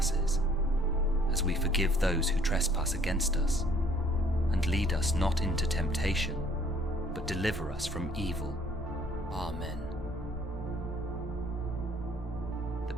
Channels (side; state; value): both; normal; correlation 0.59